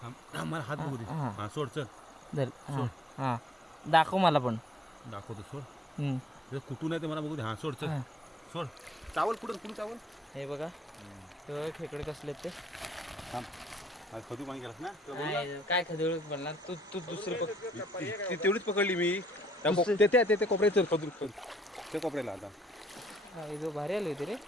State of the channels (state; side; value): normal; both; correlation 0.64